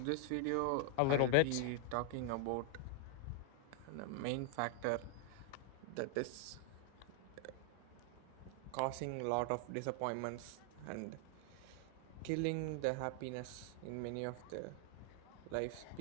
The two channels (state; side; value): different; both; correlation 0.00